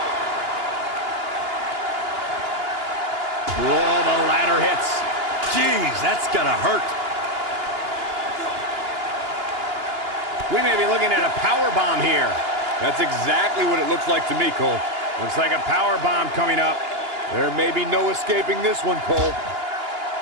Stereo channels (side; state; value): left; late; 2.9 ms